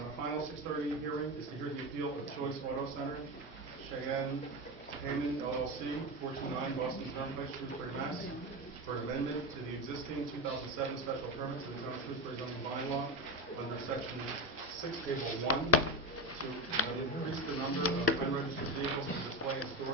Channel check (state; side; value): normal; both; correlation 0.19